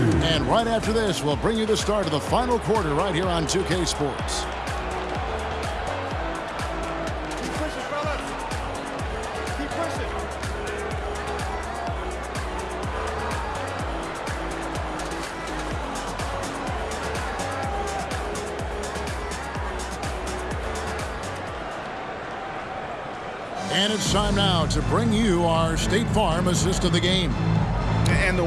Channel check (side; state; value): both; identical; correlation 1.00